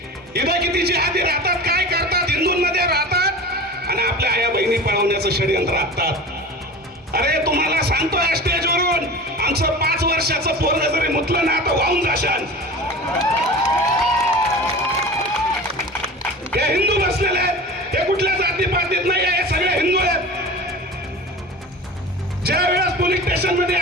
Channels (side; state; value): both; normal; correlation 0.35